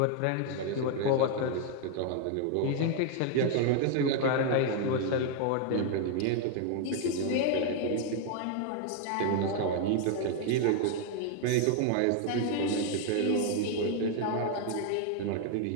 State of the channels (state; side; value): different; both; correlation 0.00